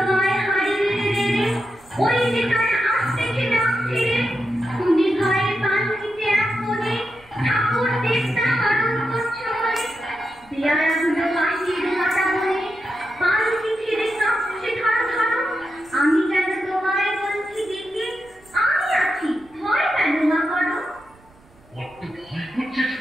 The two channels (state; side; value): noise; right; rumble, 28 dB below the sound